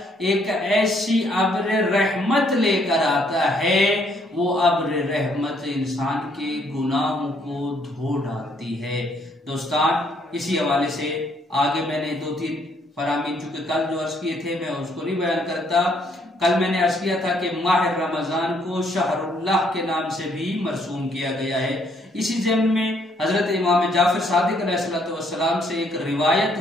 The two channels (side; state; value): both; normal; correlation 0.68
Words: एक ऐसी अब्र रहमत लेकर आता है, वो अब्र रहमत इंसान के गुनाहों को धो डालती है। दोस्तान, इसी हवाले से आगे मैंने 2-3 फरामीन चूंकि कल जो अर्ज किए थे मैं उसको नहीं बयान करता। कल मैंने अर्ज किया था कि माह रमजान को शहरुल्लाह के नाम से भी मरसूम किया गया है। इसी ज़िम्न में हजरत इमाम जाफर सादिक अलैहिस्सलाम से एक रिवायत